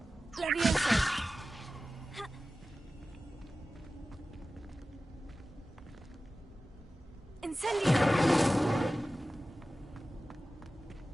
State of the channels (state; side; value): normal; both; correlation 0.95